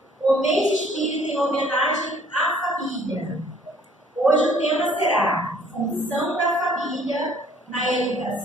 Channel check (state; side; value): normal; both; correlation 0.58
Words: o mês espírita em homenagem à família. Hoje o tema será Função da Família na